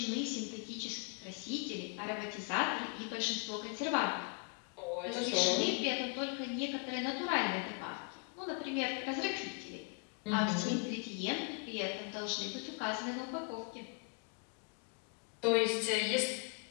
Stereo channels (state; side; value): quieter; right; 34.2 dB